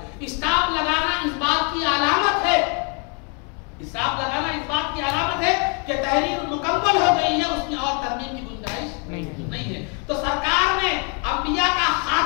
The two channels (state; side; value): quieter; right; 35.5 dB